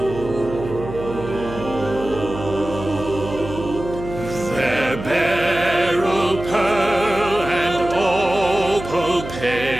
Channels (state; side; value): noise; right; hum, 10 dB below the sound